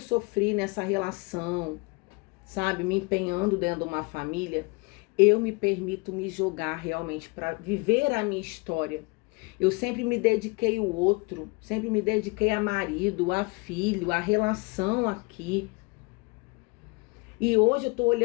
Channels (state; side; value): quieter; right; 28.1 dB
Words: nessa relação, sabe? Me empenhando dentro de uma família, eu me permito me jogar realmente para viver a minha história. Eu sempre me dediquei ao outro, sempre me dediquei a marido, a filho, a relação aqui. E hoje eu tô